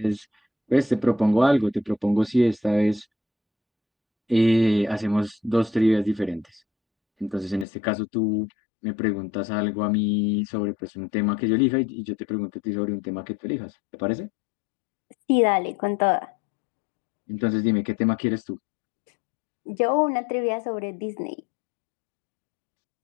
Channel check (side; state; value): right; drops out; at 7.7 s